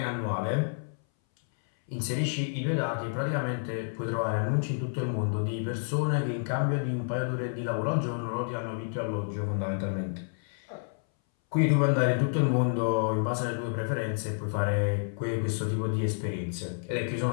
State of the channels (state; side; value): silent; right; 58 dB below the other